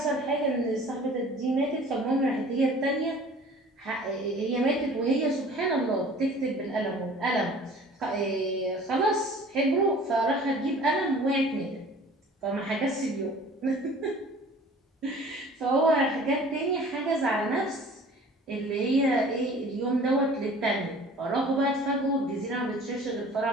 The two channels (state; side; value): normal; both; correlation 0.47